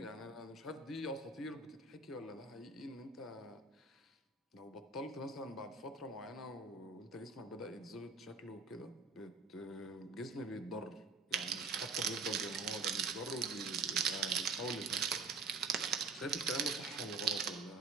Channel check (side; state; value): left; quieter; 4.4 dB